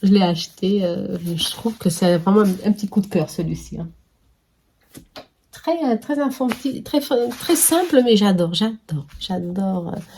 je l'ai acheté. Je trouve que c'est vraiment un petit coup de cœur, celui-ci. Hein. Très infantile, très simple, mais j'adore.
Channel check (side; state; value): both; identical; correlation 1.00